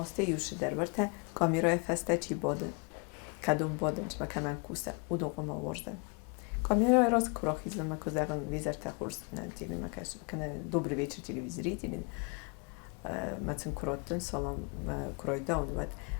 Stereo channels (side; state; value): right; quieter; 33.5 dB